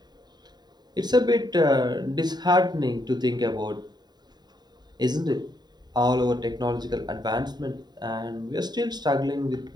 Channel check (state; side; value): late; left; 0.20 ms